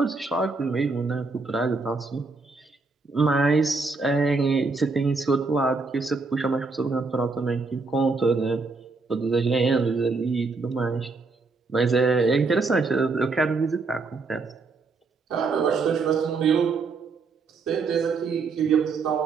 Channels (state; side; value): quieter; left; 4.1 dB